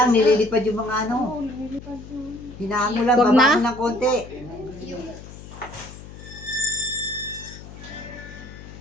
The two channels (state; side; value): noise; left; hum, 15 dB below the sound